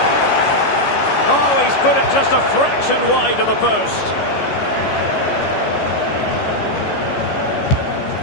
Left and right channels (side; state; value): right; late; 14 ms